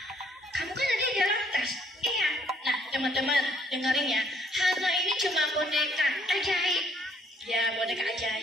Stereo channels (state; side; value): normal; both; correlation 0.65